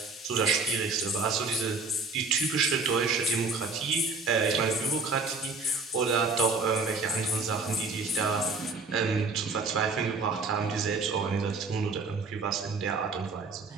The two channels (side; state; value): left; quieter; 4.1 dB